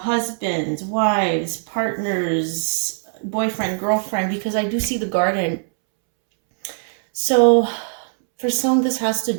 wives, partners, boyfriend, girlfriend, because I do see the garden. So for some, this has to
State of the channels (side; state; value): left; silent; 65 dB below the other